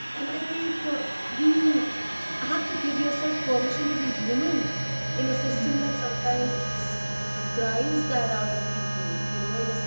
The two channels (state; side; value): inverted; both; correlation -1.00